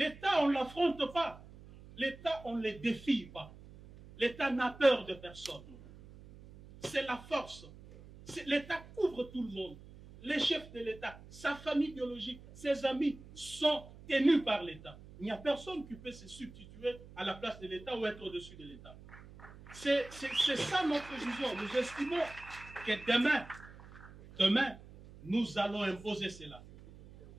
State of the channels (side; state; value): right; noise; hum, 18 dB below the sound